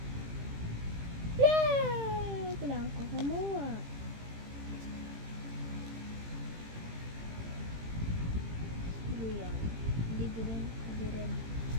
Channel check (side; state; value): left; late; 18 ms